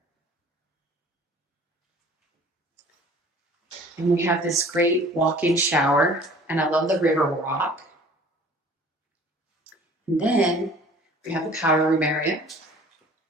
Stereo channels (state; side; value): normal; both; correlation 0.49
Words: And we have this great walk-in shower. And I love the river rock. And then we have the powder room area.